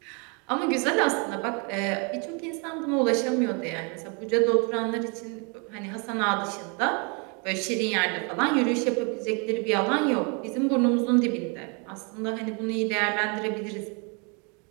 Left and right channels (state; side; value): quieter; left; 34.2 dB